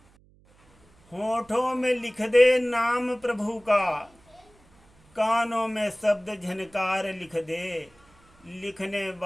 होठों में लिख दे नाम प्रभु का, कानों में शब्द झनकार लिख दे। लिखने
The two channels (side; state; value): right; noise; hum, 30 dB below the sound